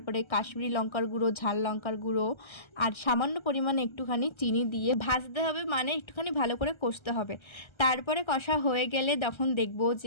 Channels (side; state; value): right; late; 1.3 ms